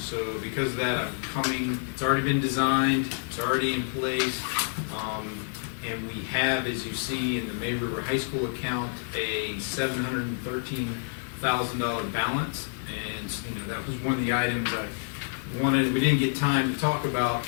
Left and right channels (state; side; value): silent; right; 59 dB below the other